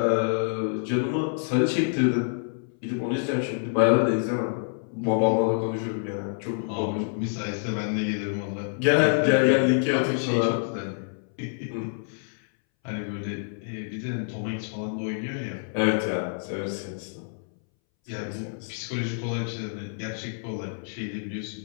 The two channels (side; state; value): right; silent; 60 dB below the other